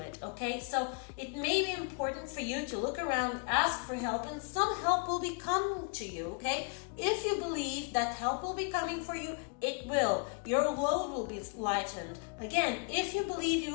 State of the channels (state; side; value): quieter; right; 37.5 dB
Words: okay? So it may be important for you to look around, ask for help, and some help will be coming to you, okay? If you believe that help will be coming for you, it will. Your load will be lightened. Again, if you believe, you